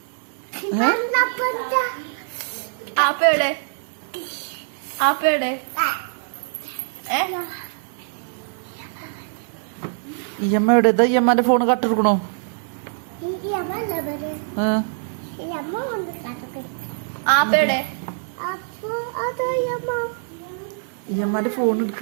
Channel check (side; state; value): left; silent; 63 dB below the other